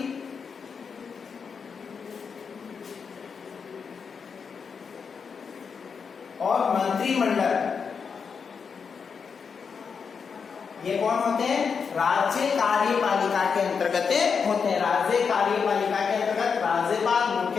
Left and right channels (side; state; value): right; quieter; 6.0 dB